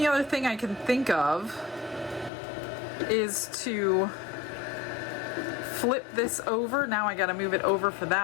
other thing I can think of is to flip this over. Now I got to move it over for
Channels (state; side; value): drops out; right; at 2.3 s